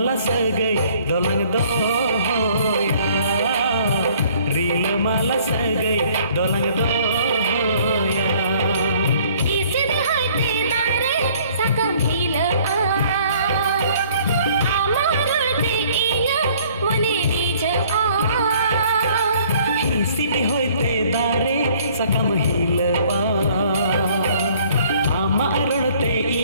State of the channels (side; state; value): both; inverted; correlation -0.57